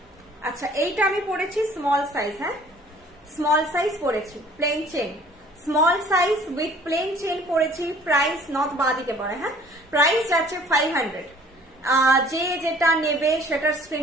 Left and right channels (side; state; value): both; normal; correlation 0.53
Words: আচ্ছা এইটা আমি পড়েছি স্মল সাইজ, হ্যাঁ স্মল সাইজ পড়েছি, plain chain, small size with plain chain পড়েছি। প্রাইস নথ বাঁ দিকে পড়ে, হ্যাঁ প্রাইস যাচ্ছে 500। যে যেটা নেবে সেটার